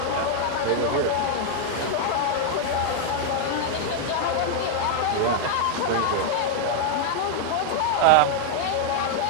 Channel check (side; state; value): both; different; correlation 0.00